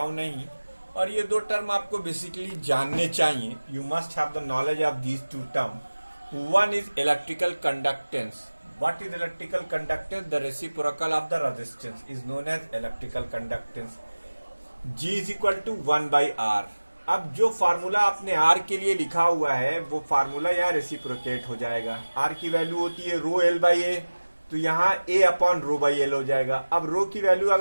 नहीं। और ये दो टर्म आपको बेसिकली जानने चाहिए। You must have the knowledge of these two term. One is electrical conductance. What is electrical conductance? The reciprocal of the resistance is known as electrical conductance. G is equal to 1 by R. अब जो formula आपने R के लिए लिखा हुआ है वो formula यहाँ रेसिप्रोकेट हो जाएगा। R की वैल्यू होती है रो एल बाई ए, तो यहाँ A upon rho by L हो जाएगा। अब रो की वैल्यू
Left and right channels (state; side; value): inverted; both; correlation -1.00